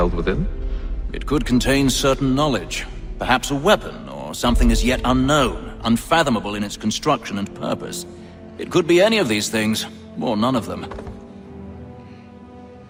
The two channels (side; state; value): both; identical; correlation 1.00